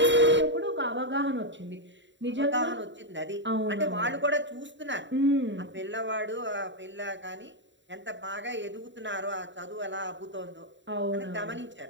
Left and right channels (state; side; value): late; left; 0.54 ms